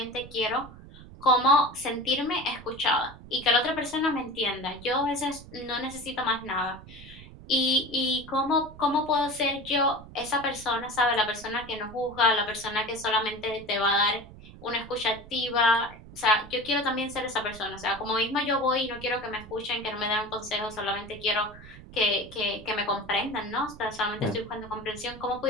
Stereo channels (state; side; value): noise; right; rumble, 17 dB below the sound